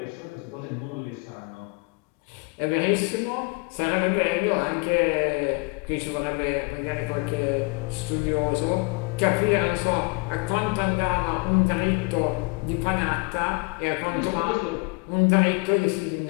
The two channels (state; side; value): quieter; right; 29.3 dB